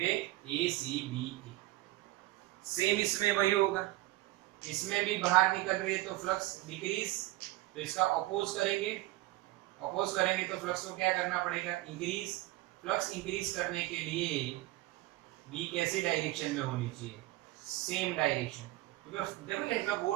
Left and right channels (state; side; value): quieter; left; 18.2 dB